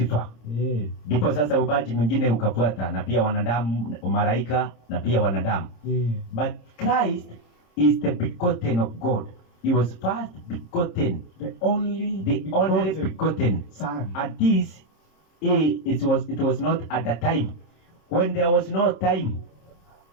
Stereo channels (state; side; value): late; right; 26 ms